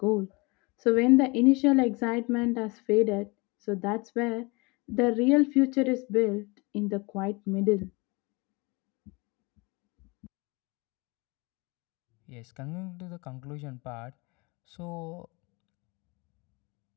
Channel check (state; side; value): quieter; right; 27.0 dB